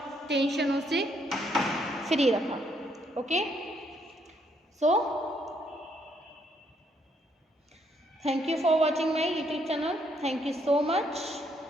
टेंशनों से फ्री रखा। Okay. So thank you for watching my YouTube channel. Thank you so much.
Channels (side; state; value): both; normal; correlation 0.72